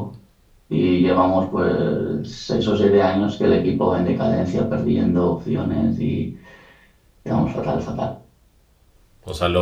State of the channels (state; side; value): identical; both; correlation 1.00